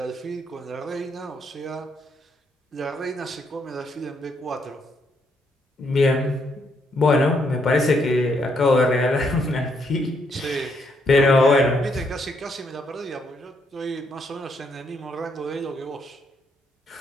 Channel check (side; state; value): both; normal; correlation 0.74